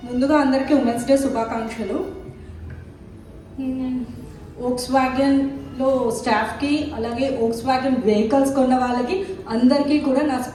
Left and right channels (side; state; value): both; identical; correlation 1.00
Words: ముందుగా అందరికీ women's day శుభాకాంక్షలు. వోక్స్ వ్యాగన్లో స్టాఫ్కి, అలాగే వోక్స్ వ్యాగన్ వెహికల్స్ కొన్న వాళ్ళకి అందరికీ కూడా నా